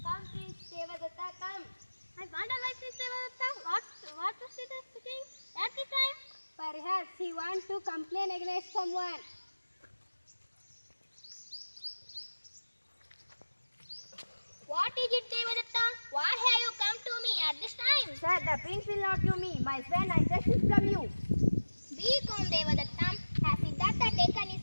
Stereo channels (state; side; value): inverted; both; correlation -1.00